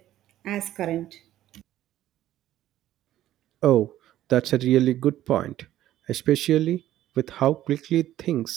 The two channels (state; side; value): quieter; left; 13.3 dB